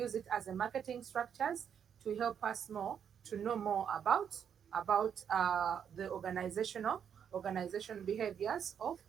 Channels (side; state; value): left; quieter; 8.1 dB